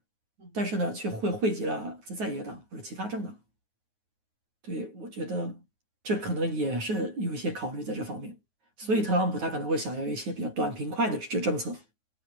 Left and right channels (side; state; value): left; late; 9.4 ms